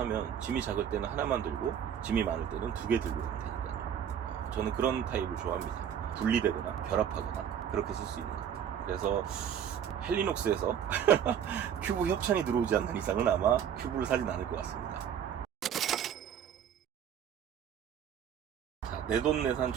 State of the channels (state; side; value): quieter; left; 8.8 dB